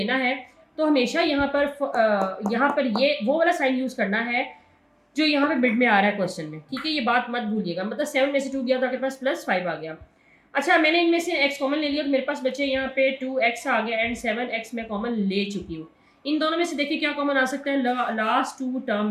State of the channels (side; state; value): both; identical; correlation 1.00